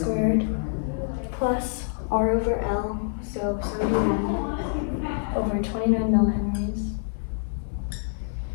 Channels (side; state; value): right; silent; 58 dB below the other